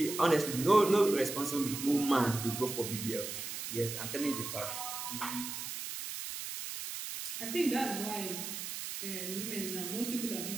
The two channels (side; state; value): right; noise; hiss, 6 dB below the sound